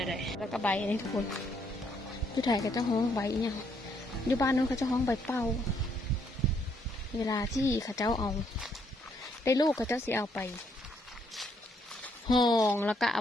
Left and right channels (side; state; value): both; normal; correlation 0.71